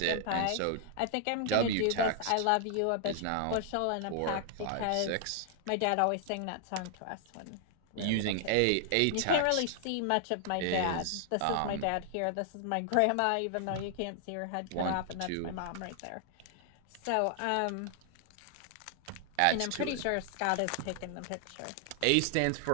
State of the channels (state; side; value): different; both; correlation 0.00